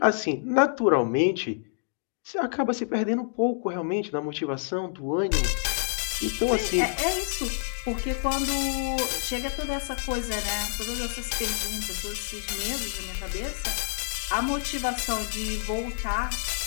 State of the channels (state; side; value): silent; right; digital silence